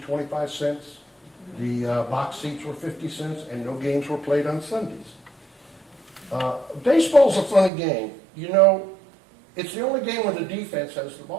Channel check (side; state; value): left; drops out; at 7.7 s